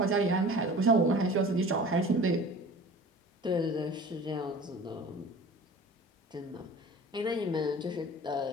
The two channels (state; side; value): normal; both; correlation 0.41